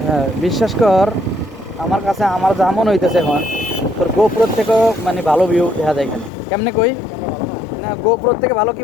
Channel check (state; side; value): drops out; right; at 6.3 s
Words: বিশ্বাস কর, আমার কাছে আমার যা মনে হইতেছে এখন তোর গোপ্রোর থেকেও মানে ভালো ভিউ দেখা যায় এখানে। কেমনে কই না, গোপ্রোর থেকে ভালো কি